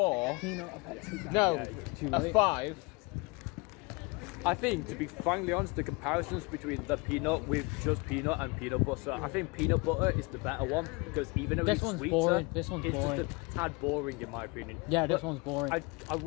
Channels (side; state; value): right; quieter; 27.8 dB